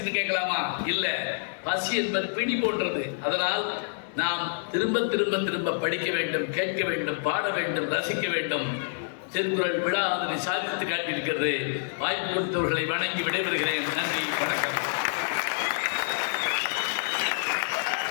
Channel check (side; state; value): right; silent; digital silence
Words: கேட்கலாமா? இல்ல, பசி என்பது பிடி போன்றது. அதனால் நாம் திரும்ப திரும்ப திரும்ப படிக்க வேண்டும், கேட்க வேண்டும், பாட வேண்டும், ரசிக்க வேண்டும். திருக்குறள் விழா அதனை சாதித்து காட்டியிருக்கிறது. வாய்ப்பு கொடுத்தவர்களை வணங்கி விடைபெறுகிறேன். நன்றி, வணக்கம்.